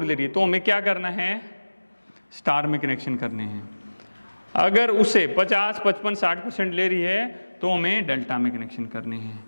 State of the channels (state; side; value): inverted; both; correlation -1.00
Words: ले रही है, तो हमें क्या करना है, स्टार में कनेक्शन करने हैं। अगर उसे 50, 55, 60% ले रही है तो हमें डेल्टा में कनेक्शन करने हैं।